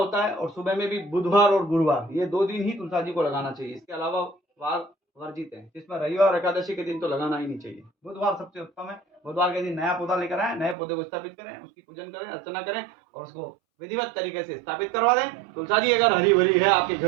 है और सुबह में भी बुधवार और गुरुवार, ये 2 दिन ही तुलसा जी को लगाना चाहिए। इसके अलावा वार वर्जित है, जिसमें रविवार और एकादशी के दिन तो लगाना ही नहीं चाहिए। बुधवार सबसे उत्तम है। बुधवार के दिन नया पौधा लेकर आए, नए पौधे को स्थापित करें, उसकी पूजन करें, अर्चना करें और उसको विधिवत तरीके से स्थापित करवा दें। तुलसा जी अगर हरी भरी है आपके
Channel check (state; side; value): drops out; left; at 10.8 s